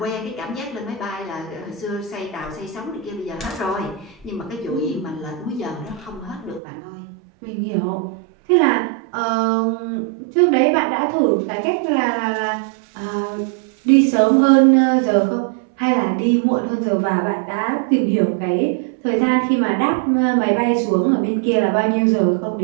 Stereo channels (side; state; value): left; drops out; at 6.6 s